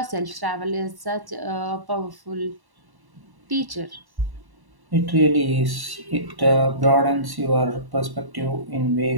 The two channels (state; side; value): late; left; 1.1 ms